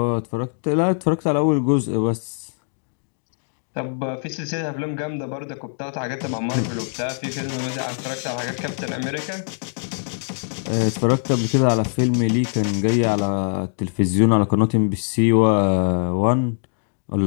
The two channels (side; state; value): right; silent; digital silence